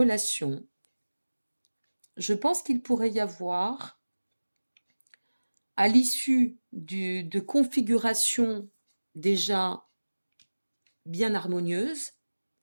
je pense qu'il pourrait y avoir, à l'issue de configurations déjà bien harmonieuses,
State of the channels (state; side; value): inverted; both; correlation -1.00